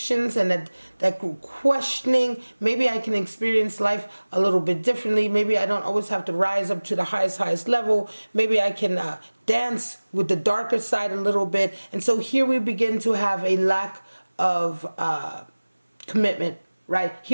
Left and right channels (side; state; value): both; inverted; correlation -1.00